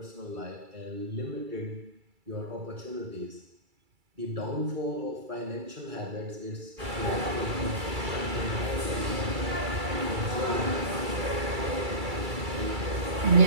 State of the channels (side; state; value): left; late; 2.3 ms